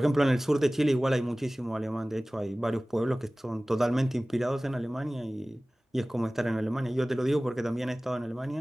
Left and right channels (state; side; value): normal; both; correlation 0.98